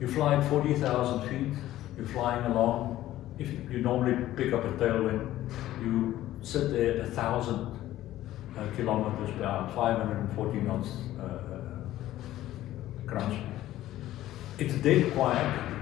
you fly at 40,000 feet. You're flying along. If you normally pick up a tailwind, you sit there at 1,000 kilometers per hour, 540 knots crunch. It's dead quiet.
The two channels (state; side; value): quieter; right; 14.3 dB